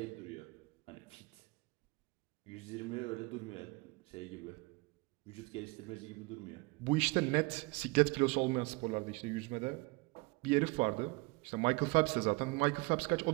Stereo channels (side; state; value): left; quieter; 25.6 dB